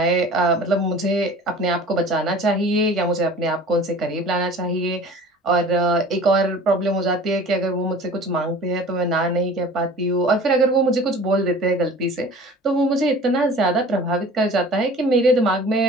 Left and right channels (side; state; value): both; normal; correlation 0.44